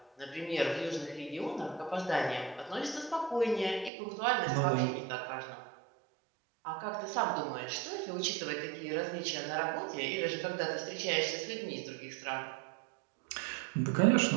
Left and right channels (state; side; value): drops out; left; at 3.9 s